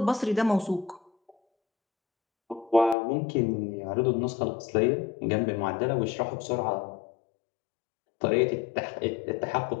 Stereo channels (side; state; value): right; drops out; at 3.0 s